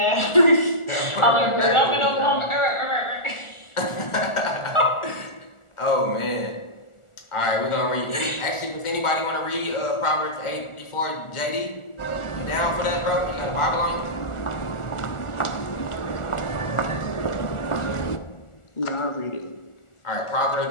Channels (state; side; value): late; right; 1.4 ms